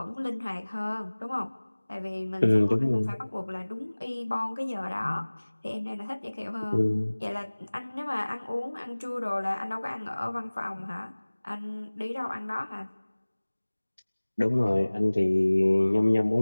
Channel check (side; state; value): both; inverted; correlation -1.00